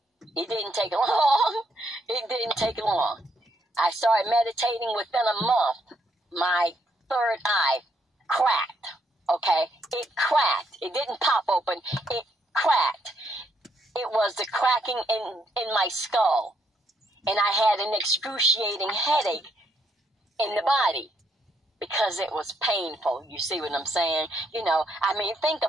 It didn't take long. It didn't take long. I started meditating. Within a month, my third eye cracked, okay? It cracked. It didn't pop open. It cracked. It was the cracking in my skull. And I had an excruciating headache in the body because it was painful. You see what I'm saying? You know, I mean, think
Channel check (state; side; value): normal; both; correlation 0.73